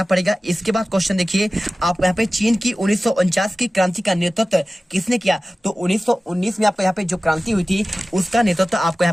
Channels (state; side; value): normal; both; correlation 0.96